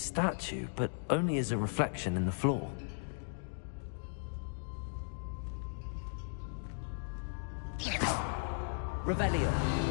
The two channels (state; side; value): silent; right; digital silence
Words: but only as a reflection in the floor. Revelio.